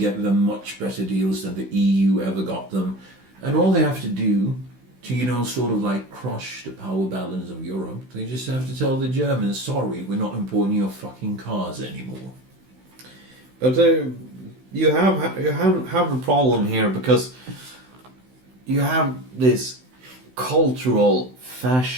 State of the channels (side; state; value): left; late; 16 ms